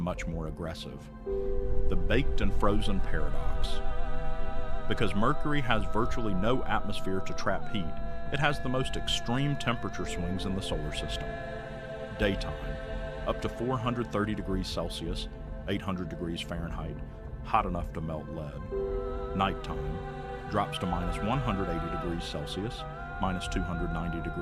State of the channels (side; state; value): both; identical; correlation 1.00